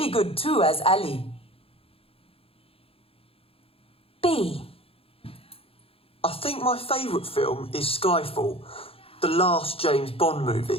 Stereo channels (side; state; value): right; late; 0.27 ms